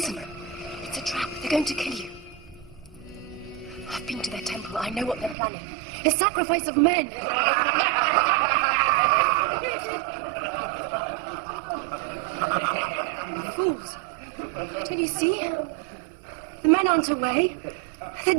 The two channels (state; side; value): drops out; left; at 5.4 s